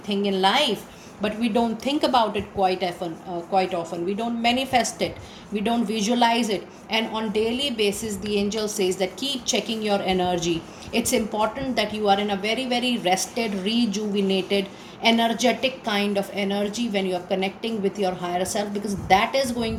thing in life, but we don't think about it quite often. We don't manifest it. We don't visualize it. And on daily basis, the angel says that keep checking your energy. It's important that you are in a very, very rested, rejuvenated, energetic kind of energy when you are connecting with your higher self, because that is going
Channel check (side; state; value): both; identical; correlation 1.00